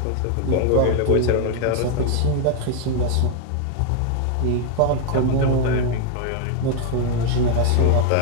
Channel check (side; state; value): both; different; correlation 0.00